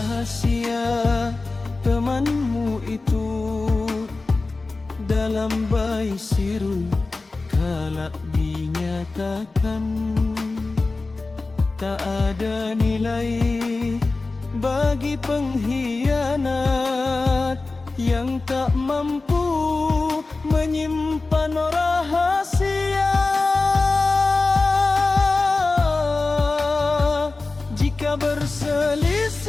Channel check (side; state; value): right; quieter; 3.5 dB